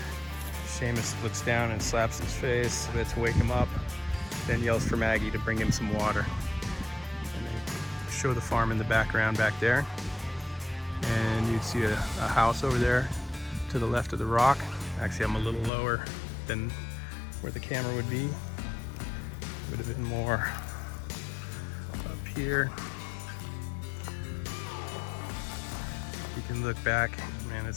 Seamus looks down and slaps his face to wake him up, then yells for Maggie to bring him some water. And they show the farm in the background back there. And you see a house over there to the left of the rock. Actually, I'm a little lower than where the camera would be. Would have been more up here. You can look back. Man,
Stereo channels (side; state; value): right; drops out; at 15.7 s